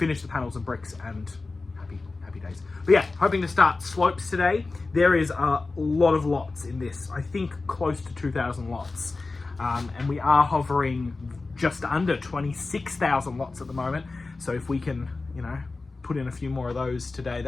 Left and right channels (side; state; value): right; quieter; 3.7 dB